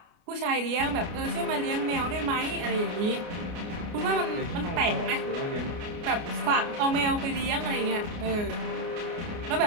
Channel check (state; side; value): late; left; 29 ms